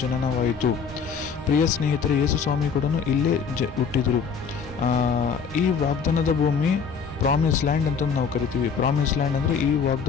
ಜನನವಾಯಿತು. ಪ್ರಿಯ ಸ್ನೇಹಿತರೆ, ಯೇಸು ಸ್ವಾಮಿ ಕೂಡ ಇಲ್ಲೇ ಹುಟ್ಟಿದರು. ಈ ವಾಗ್ದಾನದ ಭೂಮಿ ಪ್ರಾಮಿಸ್ ಲ್ಯಾಂಡ್ ಅಂತ ನಾವು ಕರಿತೀವಿ. ಪ್ರಾಮಿಸ್ ಲ್ಯಾಂಡ್ ಅಂದರೆ ಈ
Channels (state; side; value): quieter; right; 6.2 dB